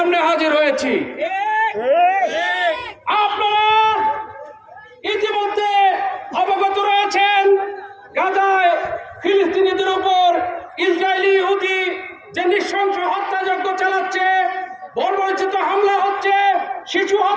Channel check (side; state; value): both; identical; correlation 1.00